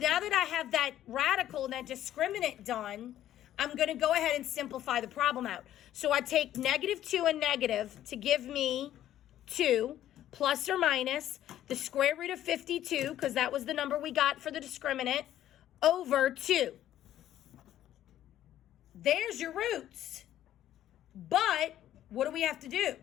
that I have that radical and that discriminant done, I'm going to go ahead and simplify the problem out. So I take negative 2 and negative to give me 2 plus or minus the square root of 52, because that was the number we got for the discriminant, over 2. There's your roots. But what do we have to do?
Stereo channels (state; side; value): quieter; right; 12.2 dB